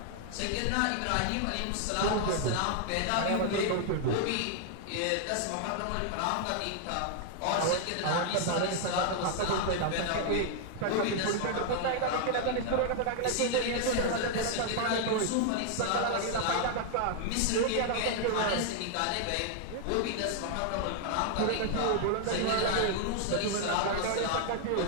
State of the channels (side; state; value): both; different; correlation 0.00